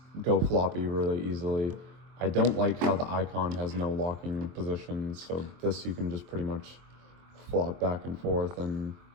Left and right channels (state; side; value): late; left; 23 ms